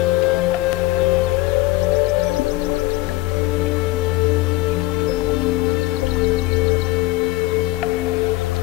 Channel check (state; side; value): quieter; right; 18.9 dB